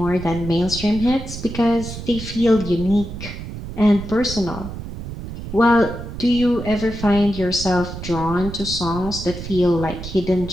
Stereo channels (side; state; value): right; noise; rumble, 9 dB below the sound